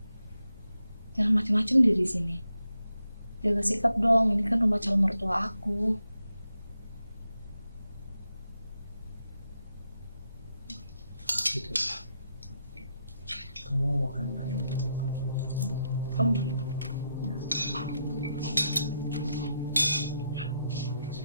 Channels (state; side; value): inverted; both; correlation -0.83